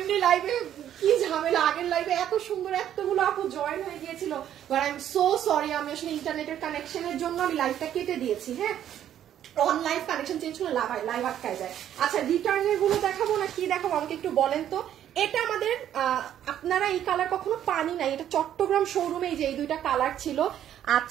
লাইভে কি ঝামেলা। আগের লাইভে এত সুন্দর এতগুলো আপু জয়েন হয়ে গিয়েছিল, but I am so sorry, আমি আসলে ইন্টারনেটের কানেকশনের জন্য আমি লাইভটা কেটে দিয়েছি। হ্যাঁ, অনলাইন কানেকশন চেঞ্জ করলে লাইভ আটকায় যায়। আচ্ছা, রিটার্নের গুলো দেখাবো না কি দেখাবো আমাকে একটু বলেন তো। এটা আমাদের আপনারা এই কালার কখনো পানি নাই, এটা চট্টগ্রাম শোরুমে যে এই দুইটা কালার ছিল।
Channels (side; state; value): left; quieter; 10.7 dB